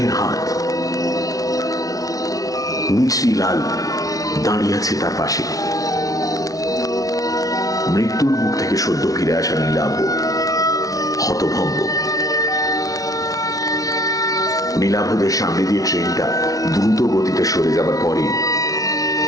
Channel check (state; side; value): late; right; 0.18 ms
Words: হাত। মিছরিলাল দাঁড়িয়ে আছে তার পাশে। মৃত্যুর মুখ থেকে সদ্য ফিরে আসা নীলাভ হতভম্ব। নীলাভদের সামনে দিয়ে ট্রেনটা দ্রুত গতিতে সরে যাবার পরে